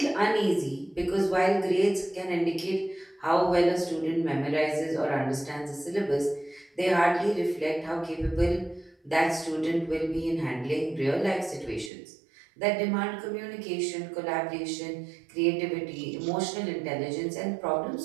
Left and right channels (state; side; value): drops out; left; at 11.9 s